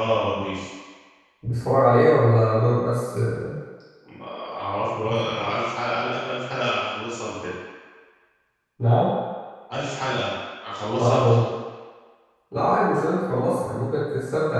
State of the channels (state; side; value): identical; both; correlation 1.00